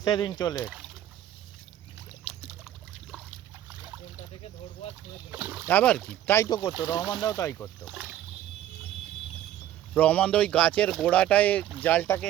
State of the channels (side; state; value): left; quieter; 12.2 dB